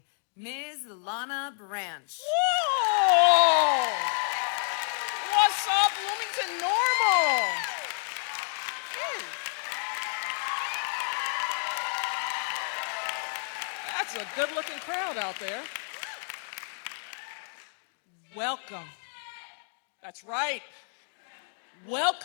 Ms. Lana Branch. Whoa! What's up, Bloomington-Normal? That's a good-looking crowd out there. Welcome. That's right.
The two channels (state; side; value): silent; right; 58 dB below the other